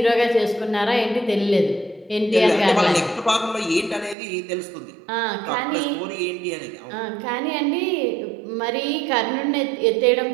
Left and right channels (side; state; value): left; drops out; at 4.2 s